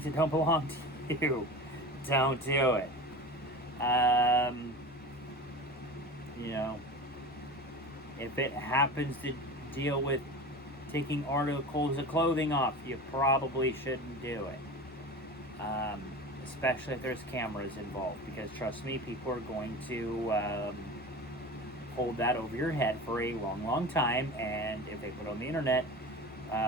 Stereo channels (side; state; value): both; normal; correlation 0.32